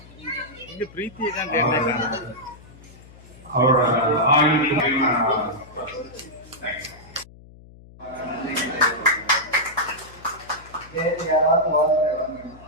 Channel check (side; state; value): left; noise; hum, 21 dB below the sound